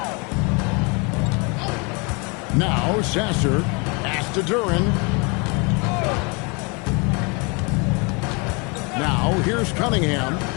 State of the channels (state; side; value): quieter; right; 31.1 dB